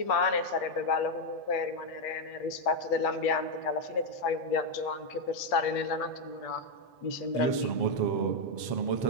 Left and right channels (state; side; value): late; right; 7.4 ms